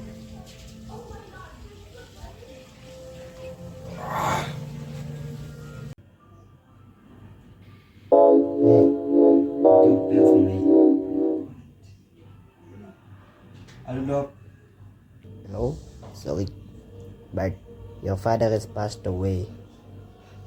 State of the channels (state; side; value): identical; both; correlation 1.00